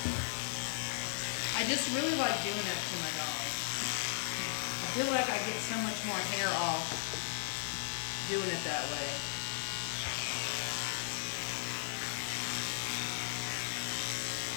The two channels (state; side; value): silent; right; 54 dB below the other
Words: I just really like doing that to my dog. I feel like I get so much more hair off doing it that way.